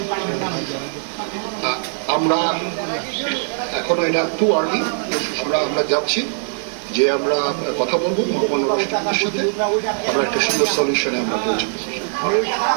আমরা এখনো এটা টু আর্লি, আমরা যাচ্ছি যে আমরা কথা বলবো ভগবান রাষ্ট্রপতির সাথে, আমরা একটা সুন্দর সলিউশনে আমরা পৌঁছাবো।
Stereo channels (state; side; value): silent; left; digital silence